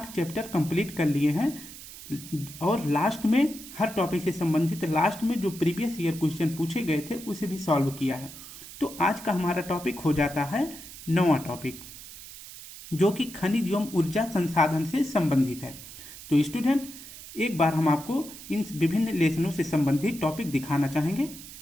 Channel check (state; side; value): noise; right; hiss, 15 dB below the sound